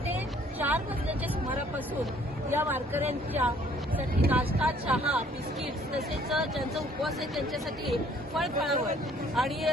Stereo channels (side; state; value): both; normal; correlation 0.60